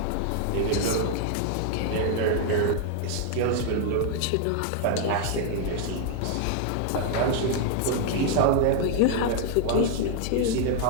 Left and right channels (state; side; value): different; both; correlation 0.00